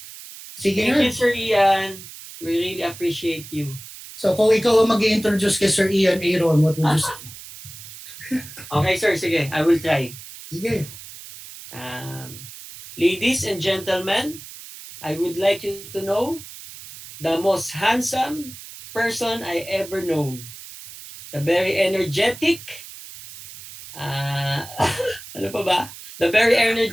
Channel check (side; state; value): right; noise; hiss, 15 dB below the sound